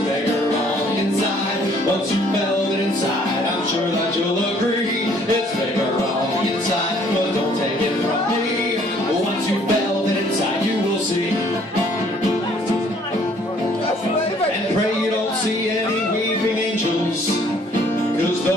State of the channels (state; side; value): normal; both; correlation 0.61